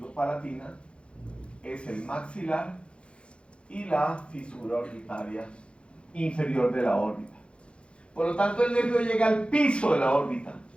es el maxilar y la fisura orbitaria inferior de la órbita. Por lo tanto, el nervio llega al piso de la órbita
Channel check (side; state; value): right; late; 0.058 ms